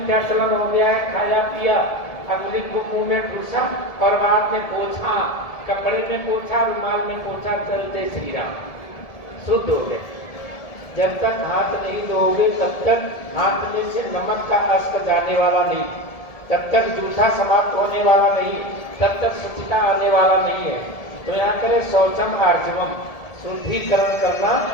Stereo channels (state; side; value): late; right; 1.7 ms